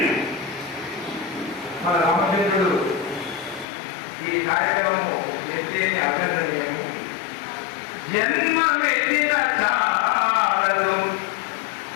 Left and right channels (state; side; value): drops out; right; at 3.7 s